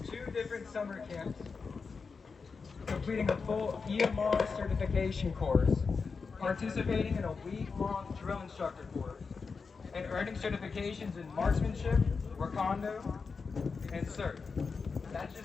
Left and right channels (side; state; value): right; quieter; 4.9 dB